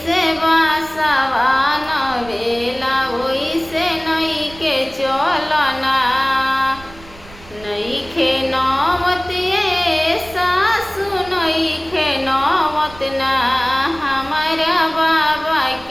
बासवा नवेला वैसे नई के चलो ना। नईखे नौवत ये सासु नईखे नौवत ना, हमारा बाबा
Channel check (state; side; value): noise; right; rumble, 20 dB below the sound